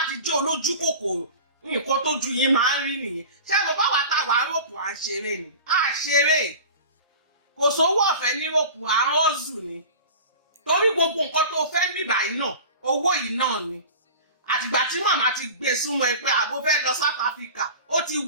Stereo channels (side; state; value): both; inverted; correlation -0.36